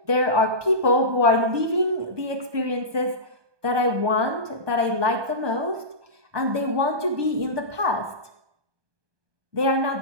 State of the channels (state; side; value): late; left; 1.2 ms